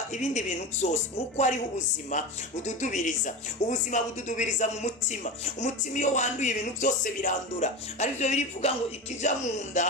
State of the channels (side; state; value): both; normal; correlation 0.24